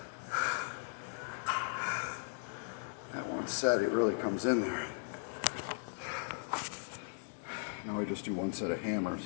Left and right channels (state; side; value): silent; right; digital silence